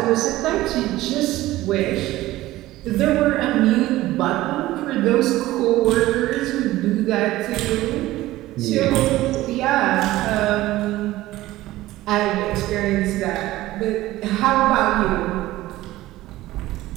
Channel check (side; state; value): left; quieter; 16.6 dB